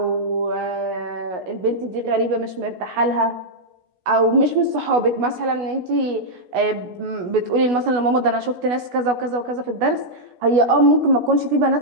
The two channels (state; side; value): late; left; 16 ms